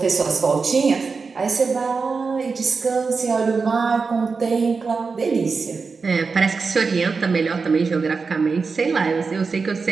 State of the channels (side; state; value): left; quieter; 4.8 dB